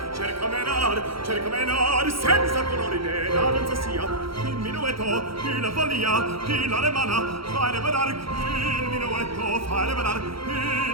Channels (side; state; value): left; late; 0.75 ms